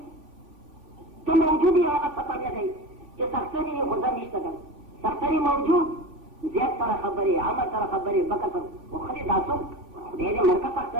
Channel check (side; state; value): left; late; 3.5 ms